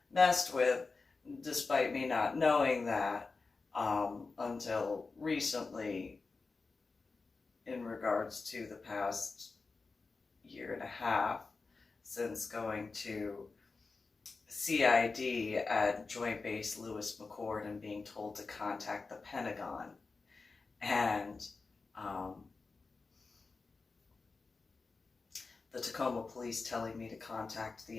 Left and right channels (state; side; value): quieter; right; 4.1 dB